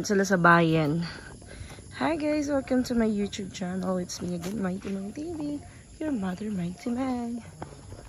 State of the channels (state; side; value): identical; both; correlation 1.00